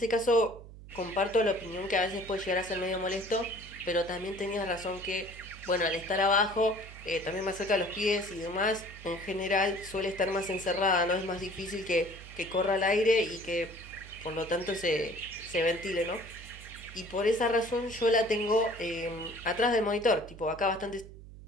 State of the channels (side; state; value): right; noise; hum, 16 dB below the sound